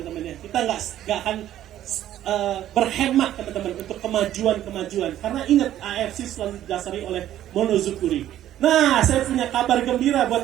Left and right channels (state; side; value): quieter; left; 12.3 dB